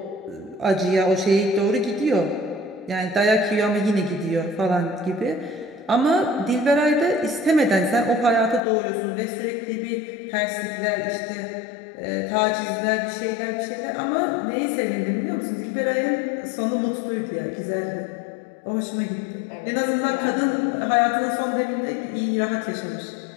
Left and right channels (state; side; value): drops out; right; at 8.6 s